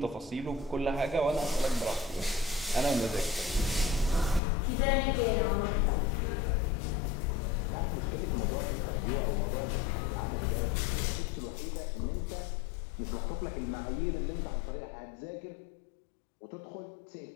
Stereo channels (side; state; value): right; drops out; at 4.4 s